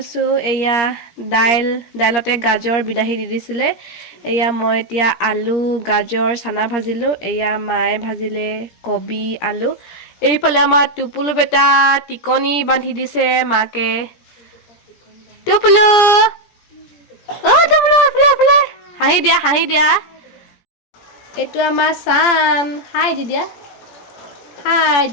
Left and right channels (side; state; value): right; late; 17 ms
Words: এয়া দাইলতে গাজৰ বিলাহী দি দিছিলে। এয়া মই এতিয়া আলু গাজৰ চানা ভাজিলোঁ। এয়া মায়ে ভাজিলে কবি আলু। এইফালে আমাৰ টুপুলু বেটা টিকনি বান্ধি দিছে মাকে। টুপুলু টুপুলু এইফালে হাঁহি দিয়া, হাঁহি দিয়া। এইটো আমাৰ চান, হাই দি দিয়া, হাই